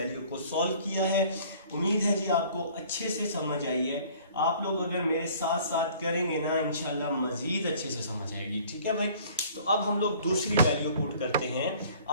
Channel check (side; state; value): both; inverted; correlation -0.52